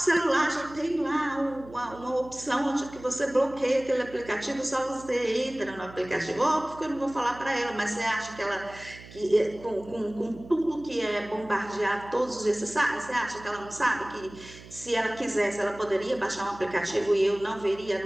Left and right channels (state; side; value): noise; right; hum, 18 dB below the sound